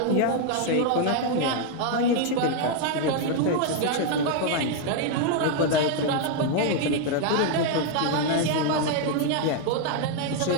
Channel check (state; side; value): different; both; correlation 0.00